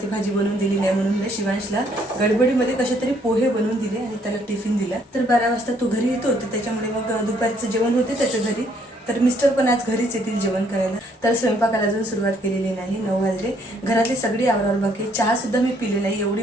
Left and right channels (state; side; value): normal; both; correlation 0.66